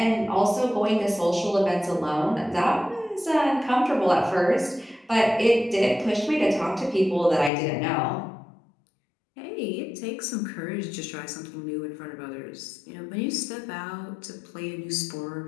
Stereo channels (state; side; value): drops out; right; at 7.5 s